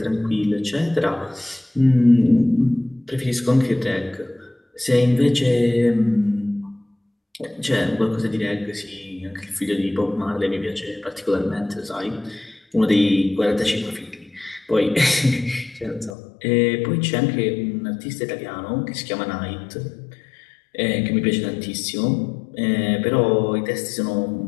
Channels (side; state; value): right; drops out; at 16.2 s